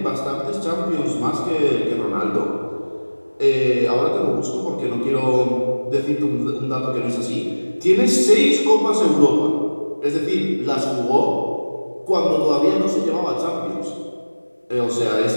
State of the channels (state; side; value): inverted; both; correlation -1.00